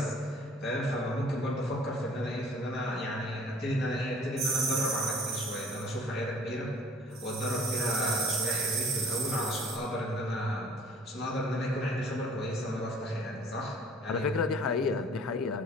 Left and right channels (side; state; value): both; normal; correlation 0.52